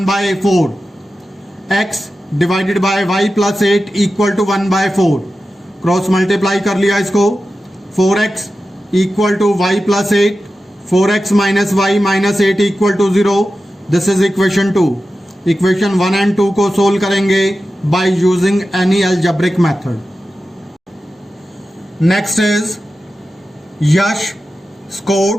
x divided by y +8 equal to 1/4, cross multiply कर लिया इसको, 4x equal to y +8, 4x minus y minus 8 equal to 0, this is equation 2। Equation 1 and 2 को solve करेंगे by using any algebraic method. Next is Yash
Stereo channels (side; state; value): both; normal; correlation 0.93